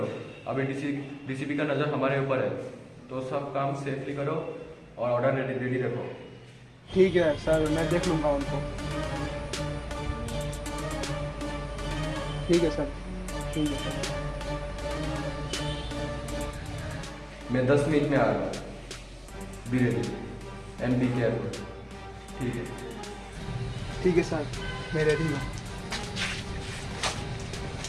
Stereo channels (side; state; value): both; identical; correlation 1.00